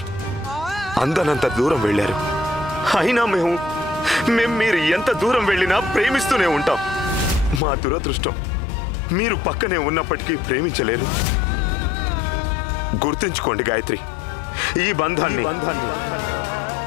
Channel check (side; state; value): right; drops out; at 7.6 s